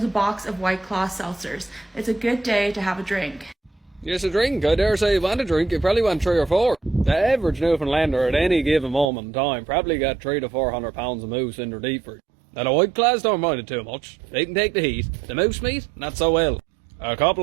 a box of White Claw seltzers. It's a good day to have a drink. Yes, a drink. I dare say you want a drink. You probably want 3 or 4. The average Newfoundlander at any given moment in time probably got 300 to 400 pounds of moose in their deep fridge. Now the White Claws don't mind it too much. They can take the heat. The moose meat, not so well. A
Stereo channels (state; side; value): drops out; left; at 9.1 s